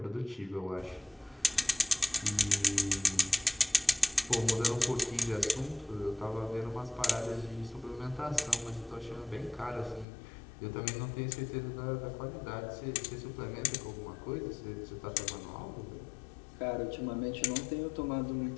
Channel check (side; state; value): right; drops out; at 10.1 s